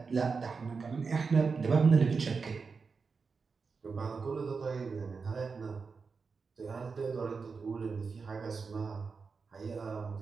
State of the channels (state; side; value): quieter; left; 4.9 dB